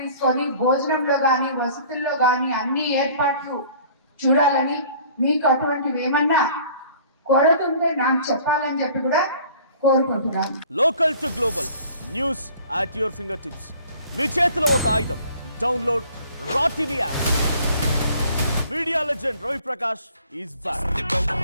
తీసుకొని భోజనంలో కానీ వసతుల్లో కానీ అన్ని ఏర్పాట్లు చూడాలని, మీకు అటువంటివి ఏమన్నా కొరతుంటే నాకు చెప్పాలని చెప్పి కూడా కోరుకుంటున్నాను. Local to global news at your fingertips. మీ చేతిలో ఒక ఆయుధం. Download Raw TV app. Media legend Ravi Prakash is back.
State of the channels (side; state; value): both; inverted; correlation -0.51